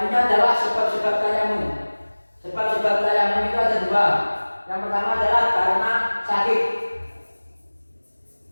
adalah sebab-sebab tayamum. Sebab-sebab tayamum itu ada dua. Yang pertama adalah karena sakit.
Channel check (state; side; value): inverted; both; correlation -1.00